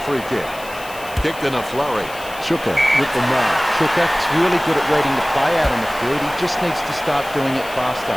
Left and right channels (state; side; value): noise; left; hiss, 17 dB below the sound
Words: free kick. Kicked in a flurry. Chuka with the mark. Chuka's really good at reading the play out on the field. He just needs to start doing it faster.